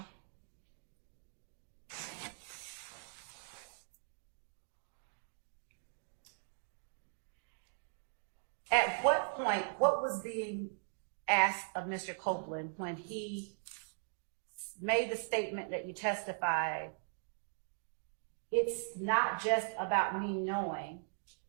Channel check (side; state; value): left; silent; digital silence